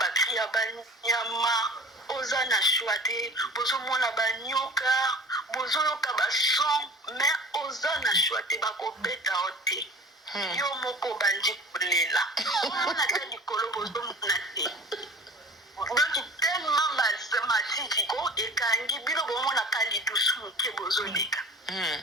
ya banyama oza na shwa te bozomona banyoka bozoyoka bason me oza na shwa te bakobeta o te yo moko bandi kolela omona ta likolo bozomona te donc tellement matiki ko ekangi bino bomonaka lidusu moke bozoleka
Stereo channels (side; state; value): both; normal; correlation 0.42